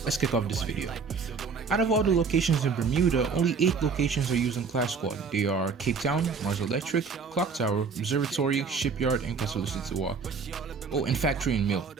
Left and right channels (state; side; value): quieter; left; 5.2 dB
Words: let's kick off this video. Out of all the locations in Bermuda, only 8 locations are used in Clash Squad. They are Cape Town, Mars Electric, Clock Tower, Observatory, Shipyard, and Castle Sitiwa. Oh, and Factory and Mill,